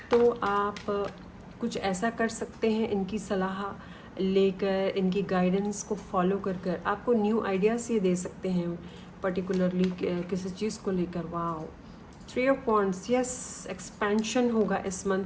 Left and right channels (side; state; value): both; identical; correlation 1.00